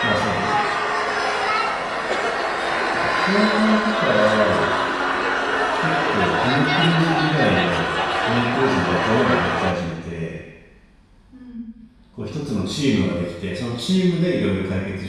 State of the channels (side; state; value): both; identical; correlation 1.00